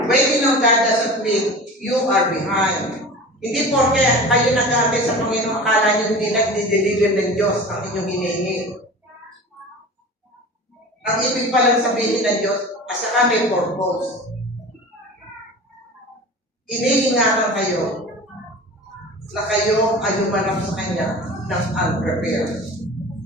Waiting on God doesn't mean you are behind. Hindi porke kayo nag-aantay sa Panginoon, akala nyo hindi nag-deliver ng Diyos ang inyong hinihingi. Ang ibig palang sabihin ng Diyos, asa kami purpose. Iniingatan kayo na kayo ay humanap sa Kanya ng unprepared,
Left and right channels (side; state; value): both; normal; correlation 0.36